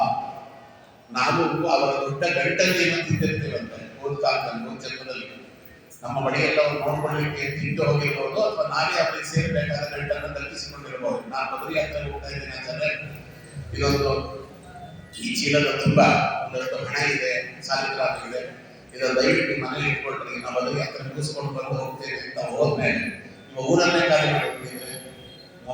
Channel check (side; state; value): both; identical; correlation 1.00